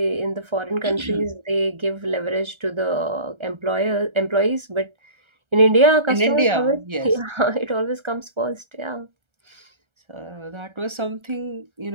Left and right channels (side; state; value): left; late; 1.3 ms